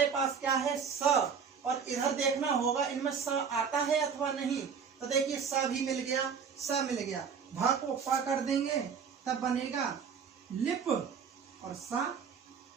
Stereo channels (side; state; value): left; quieter; 6.5 dB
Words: पास क्या है स, और इधर देखना होगा इनमें स आता है अथवा नहीं। तो देखिए स भी मिल गया, स मिल गया, भ को प कर देंगे, तब बनेगा लिप और सा।